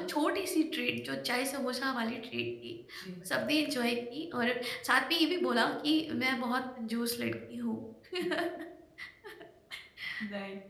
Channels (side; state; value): both; identical; correlation 1.00